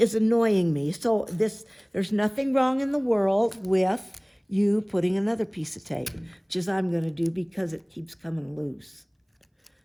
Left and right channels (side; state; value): both; identical; correlation 1.00